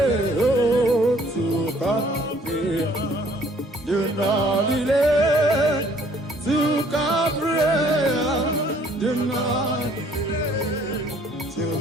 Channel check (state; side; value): normal; both; correlation 0.59